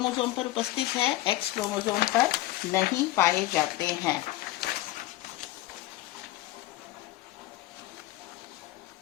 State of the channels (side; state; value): right; quieter; 16.6 dB